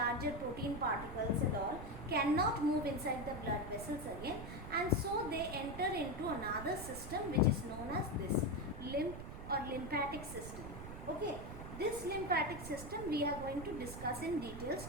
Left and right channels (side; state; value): right; noise; rumble, 10 dB below the sound